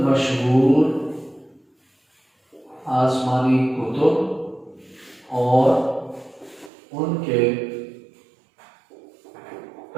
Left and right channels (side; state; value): left; drops out; at 6.7 s